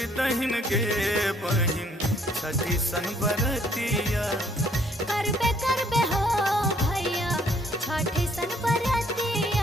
दहिन के बहिन छठी सन बरतिया। करबे करबे हो भैया छठी सन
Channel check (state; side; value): normal; both; correlation 0.64